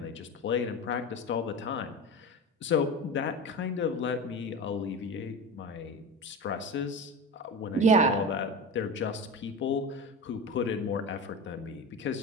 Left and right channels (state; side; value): normal; both; correlation 0.27